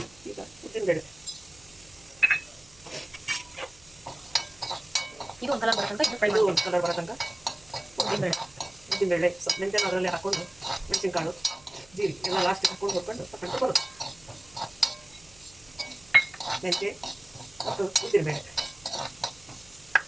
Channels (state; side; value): noise; right; hum, 26 dB below the sound